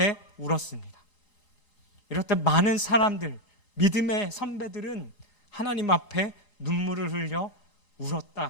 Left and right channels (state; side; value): late; right; 3.8 ms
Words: 울었습니다. 이렇듯 많은 사람들, 믿음의 선배들은 하나님 앞에 눈물을 흘려